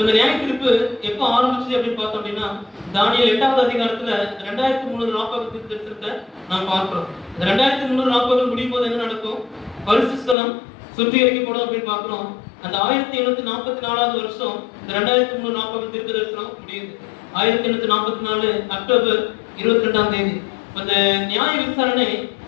இந்த நியாய தீர்ப்பு எப்ப ஆரம்பிச்சு அப்படின்னு பார்த்தோம் அப்படின்னா, தானியேல் 8வது அதிகாரத்துல 2340 தீர்க்கத்தை நாம் பார்க்கிறோம். இந்த 2340 முடியும் போது என்ன நடக்கும்? பரிசுத்த ஸ்தலம் சுத்திகரிக்கப்படும் அப்படின்னு பார்க்கிறோம். அந்த 1844வது வருஷம் இந்த 2340 தீர்க்க தரிசனம் முடியுது. 1844 அக்டோபர் 22ஆம் தேதி அந்த நியாய விசாரணை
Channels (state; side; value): drops out; right; at 10.4 s